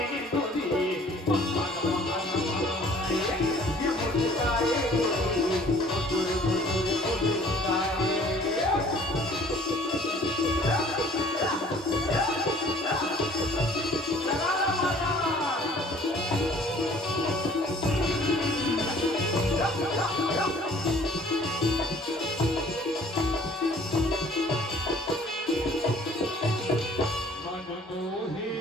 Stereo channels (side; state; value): both; normal; correlation 0.54